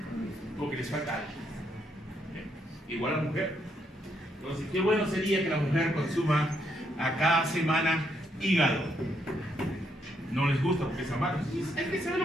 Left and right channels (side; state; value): both; normal; correlation 0.75